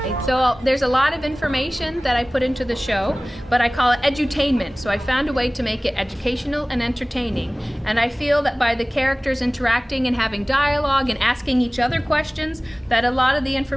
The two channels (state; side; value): normal; both; correlation 0.98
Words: So there's a lot of information that I put into the show, but I call it edutainment. So I found a way to make it educational and entertaining. And I feel that by the characters interacting and having dialogue and asking each other questions, that a lot of the